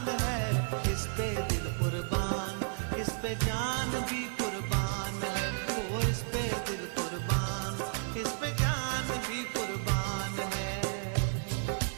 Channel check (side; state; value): left; silent; digital silence